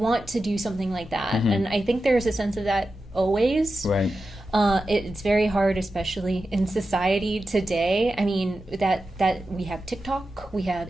to do something like that. And I think there's a sense of that always. Right. It's very hard, especially in society today. I mean, that we have TikTok, we have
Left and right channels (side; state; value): both; normal; correlation 0.91